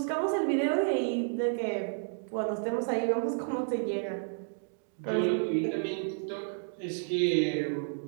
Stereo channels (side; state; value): left; silent; digital silence